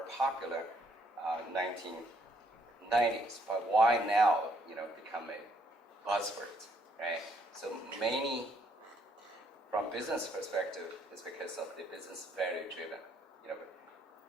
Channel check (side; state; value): both; normal; correlation 0.69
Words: popular 1990s. But why now, become a buzzword, right? So many, from business perspective, is because of the business value driven.